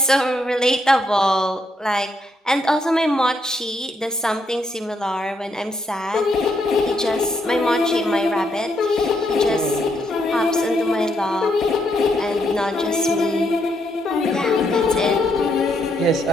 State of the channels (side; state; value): both; normal; correlation 0.76